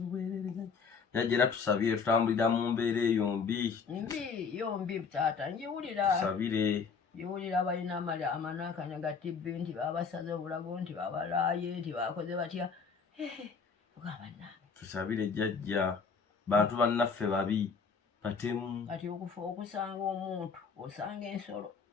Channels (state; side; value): quieter; right; 5.5 dB